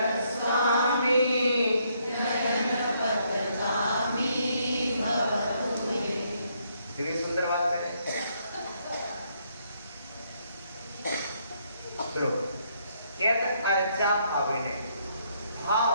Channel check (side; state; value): both; inverted; correlation -0.72